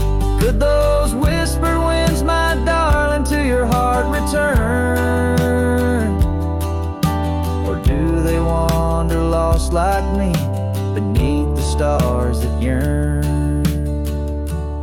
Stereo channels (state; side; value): identical; both; correlation 1.00